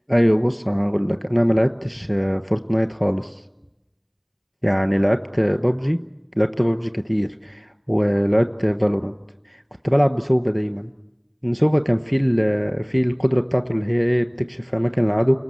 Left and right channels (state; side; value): identical; both; correlation 1.00